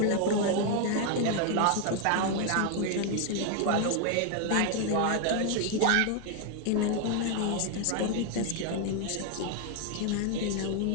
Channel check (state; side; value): different; both; correlation 0.01